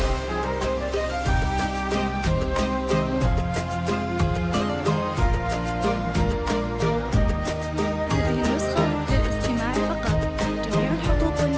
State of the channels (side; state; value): both; identical; correlation 1.00